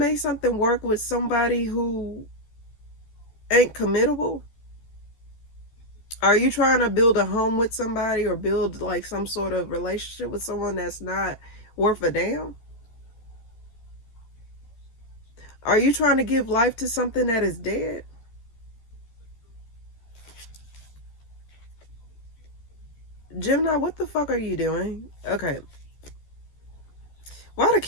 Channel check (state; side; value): late; right; 14 ms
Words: something work with somebody who ain't committable? Are you trying to build a home with somebody or build like some sort of relationship with someone that's not worth a damn? Are you trying to give life to something that is dead? Gemini, what the fuck are you doing? Okay. Why the